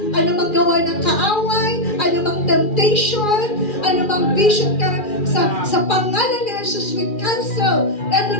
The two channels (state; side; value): late; right; 2.4 ms